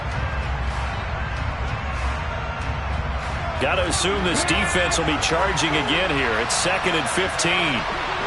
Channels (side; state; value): both; identical; correlation 1.00